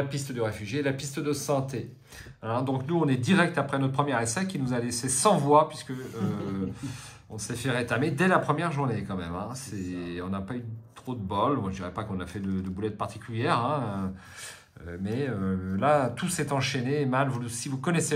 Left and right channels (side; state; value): both; identical; correlation 1.00